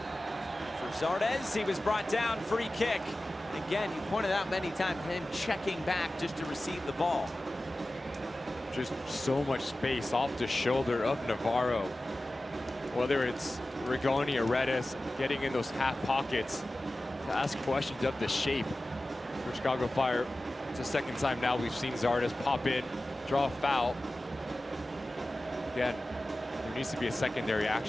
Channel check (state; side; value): normal; both; correlation 0.95